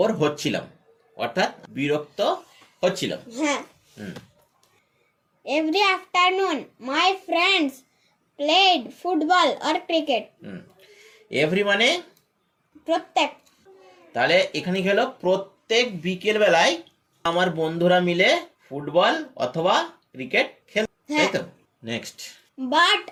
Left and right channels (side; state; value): both; identical; correlation 1.00